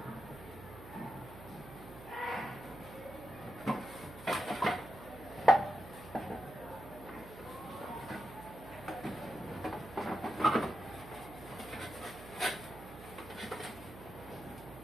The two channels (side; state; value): right; noise; hum, 15 dB below the sound